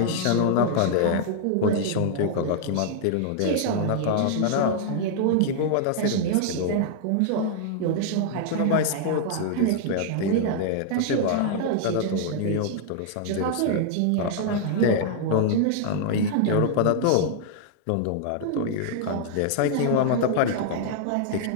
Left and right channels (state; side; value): different; both; correlation -0.01